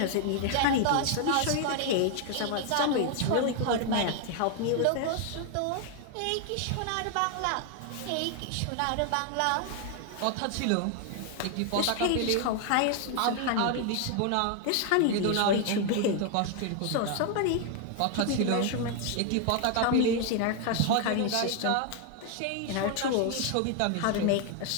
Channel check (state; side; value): different; both; correlation 0.00